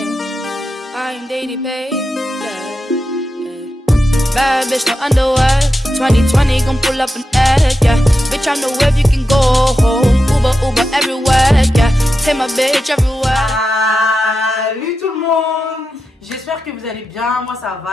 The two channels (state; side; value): normal; both; correlation 0.89